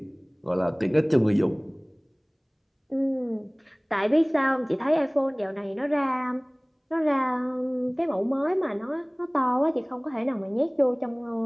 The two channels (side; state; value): both; identical; correlation 1.00